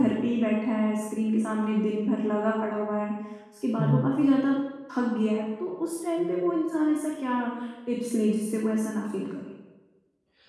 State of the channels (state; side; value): identical; both; correlation 1.00